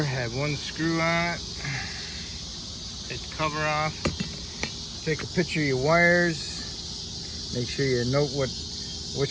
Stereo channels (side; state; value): both; identical; correlation 1.00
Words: have 1 screw on it. Take the cover off. Take a picture of your wires. Make sure you note